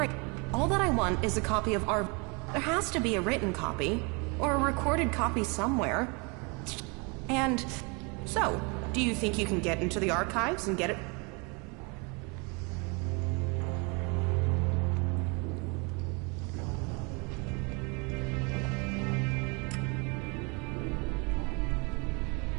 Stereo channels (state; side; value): quieter; left; 31.0 dB